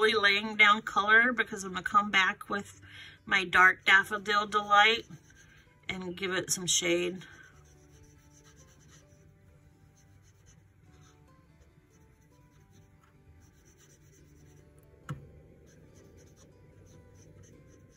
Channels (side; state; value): both; identical; correlation 1.00